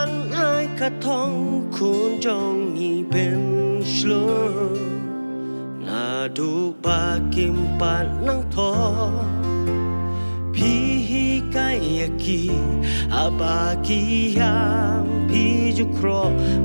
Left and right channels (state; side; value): inverted; both; correlation -1.00